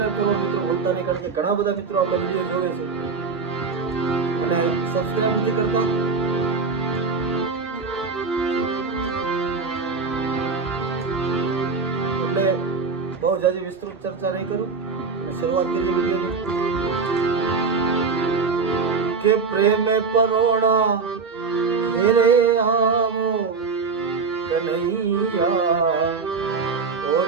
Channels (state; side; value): quieter; left; 4.8 dB